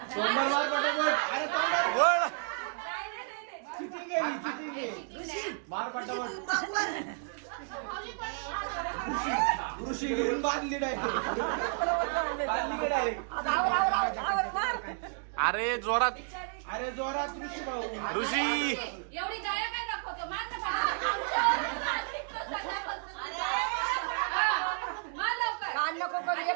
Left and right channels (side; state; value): left; silent; 57 dB below the other